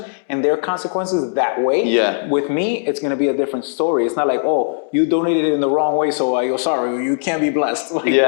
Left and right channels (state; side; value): silent; right; digital silence